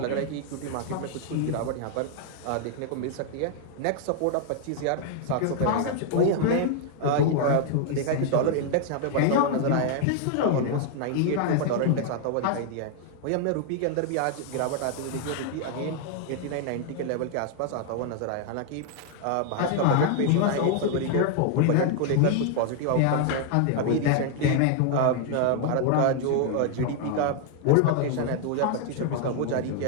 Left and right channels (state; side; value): different; both; correlation 0.00